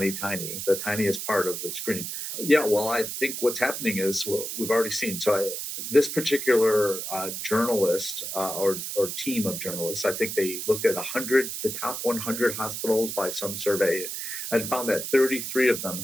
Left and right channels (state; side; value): noise; right; hiss, 5 dB below the sound